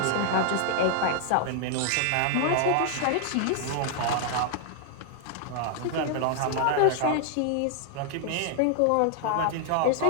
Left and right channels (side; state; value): both; different; correlation 0.00